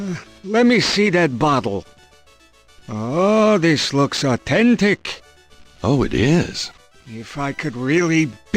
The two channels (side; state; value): both; identical; correlation 1.00